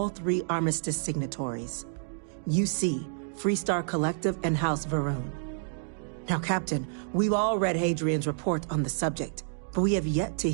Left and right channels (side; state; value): left; silent; digital silence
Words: three Armistice signatories. UC, Freestar Collective, and House Varun. Now, Captain, we've all read Hadrian's report on the subject, but we have yet to